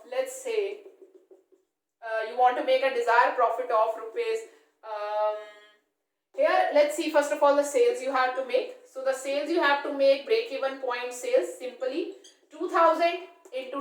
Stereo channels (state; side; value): identical; both; correlation 1.00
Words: let's say, you want to make a desired profit of rupees, here let's see first of all the sales you have to make. So the sales you have to make, break even point sales, simply 2000